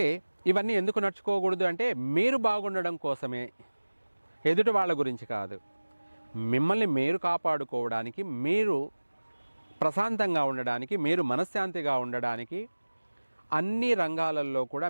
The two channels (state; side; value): inverted; both; correlation -1.00